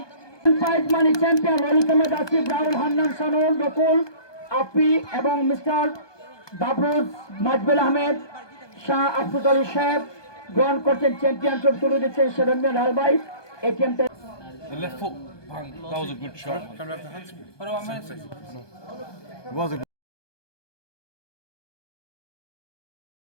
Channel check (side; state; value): right; late; 1.2 ms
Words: prize money champion Lalit Ahmed Asif Rahul Hannan Sanul Nakul আপি এবং মিস্টার বাবরুজ মাজবেল আহমেদ শাহ আফরুজ আলী সাহেব গ্রহণ করছেন চ্যাম্পিয়নশিপ তুলে দিচ্ছেন সেরন্যাল আলবাই এই টিমটা The left foot, bang, that was a good shot. Can we have the hands? What do I mean? It was a